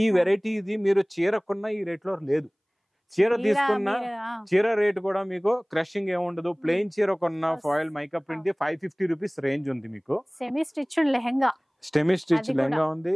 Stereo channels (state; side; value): identical; both; correlation 1.00